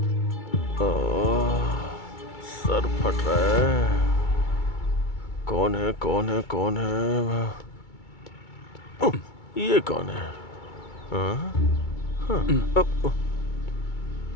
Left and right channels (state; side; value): late; right; 2.3 ms